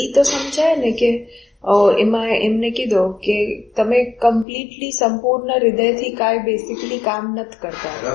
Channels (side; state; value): right; drops out; at 4.5 s